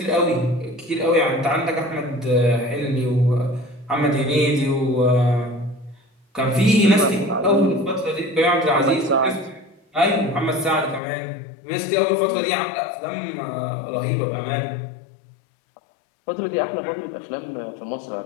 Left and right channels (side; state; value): right; drops out; at 11.0 s